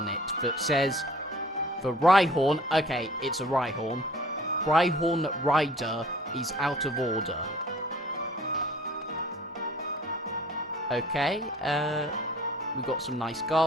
it that says, the Rhyhorn, okay, it's a Rhyhorn. Rhyhorn Rider is out of order. Okay, we got some nice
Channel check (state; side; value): normal; both; correlation 0.51